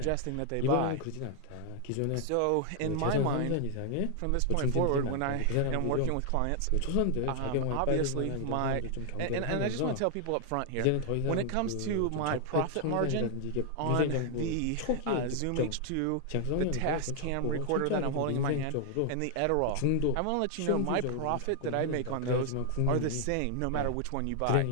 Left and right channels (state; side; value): different; both; correlation 0.00